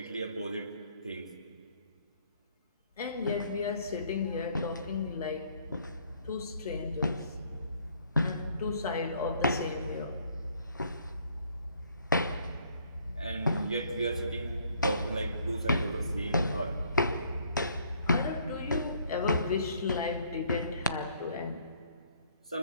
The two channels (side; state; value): both; inverted; correlation -0.64